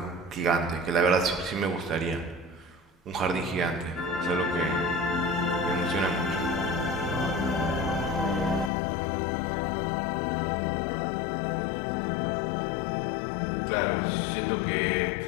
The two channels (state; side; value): drops out; right; at 8.7 s